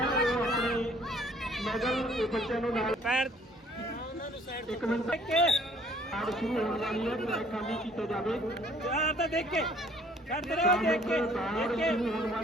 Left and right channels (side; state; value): both; normal; correlation 0.58